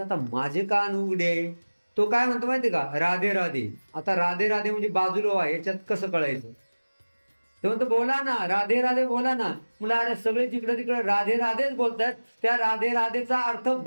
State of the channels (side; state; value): both; inverted; correlation -1.00